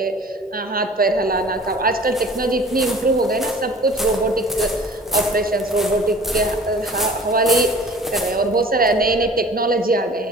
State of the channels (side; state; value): both; normal; correlation 0.46